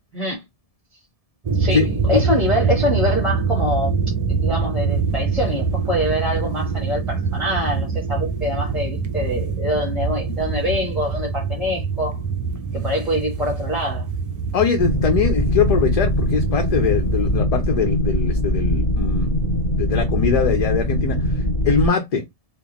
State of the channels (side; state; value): right; late; 1.7 ms